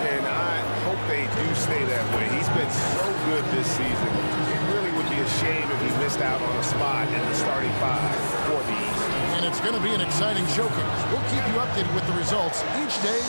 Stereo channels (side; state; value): both; inverted; correlation -1.00